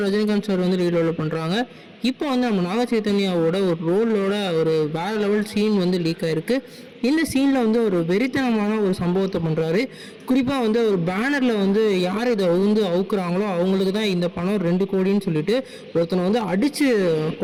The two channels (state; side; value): identical; both; correlation 1.00